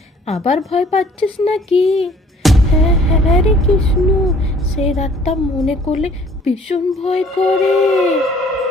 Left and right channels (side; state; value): both; normal; correlation 0.56